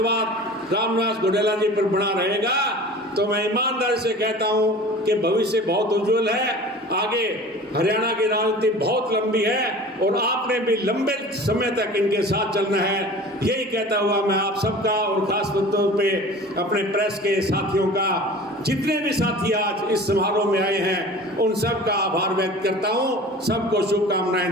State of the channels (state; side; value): normal; both; correlation 0.41